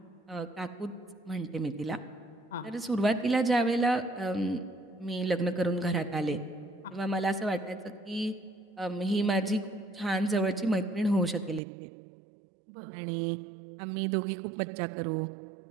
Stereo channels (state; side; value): drops out; left; at 11.6 s